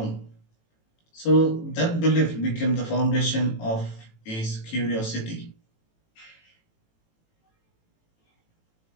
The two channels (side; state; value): right; late; 18 ms